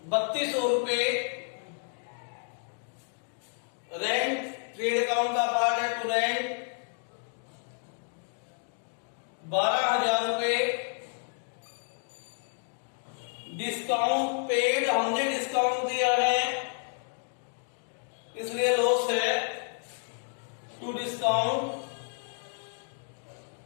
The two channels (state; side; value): silent; right; 57 dB below the other